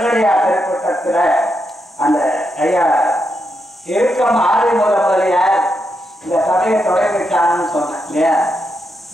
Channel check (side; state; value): both; normal; correlation 0.83